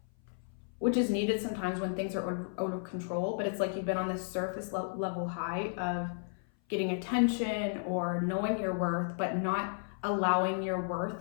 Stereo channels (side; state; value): right; silent; 55 dB below the other